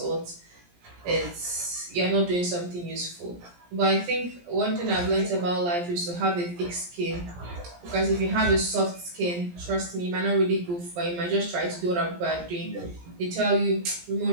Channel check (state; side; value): late; left; 17 ms